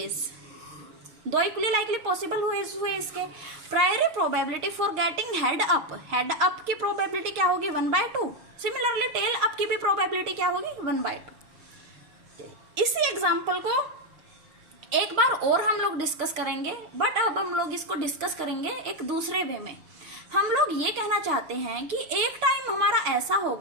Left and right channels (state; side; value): late; left; 6.5 ms